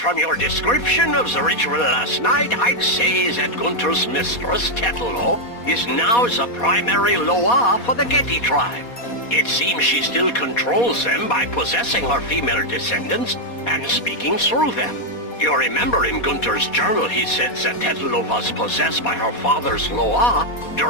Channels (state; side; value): late; right; 4.2 ms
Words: your description of the ritual last night, I'd say that Gunther's mistress, Tetelo, is now the primary Loa for the Getty tribe. It seems she still controls them by possessing her female descendants and speaking through them. You remember in Gunther's journal he said that Tetelo was possessed by her father's Loa